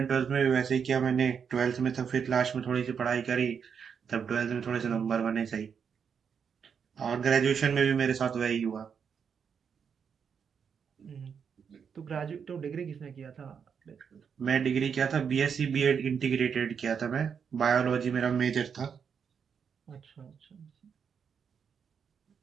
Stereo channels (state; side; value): quieter; left; 6.9 dB